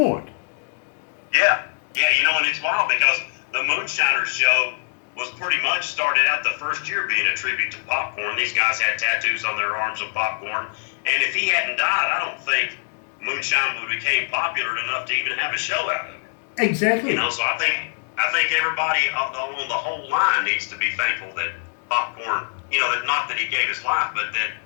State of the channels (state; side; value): silent; right; digital silence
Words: Yeah, you know, and it's wild because the Moonshiners show was pretty much started out the first year being a tribute to Popcorn. These guys had tattoos on their arms of Popcorn, and if he hadn't died, I don't think moonshine would became popular enough to even have a show out of it. Exactly. You know, so I think everybody on the whole line needs to be thankful that Popcorn, you know, that not that he gave his life, but that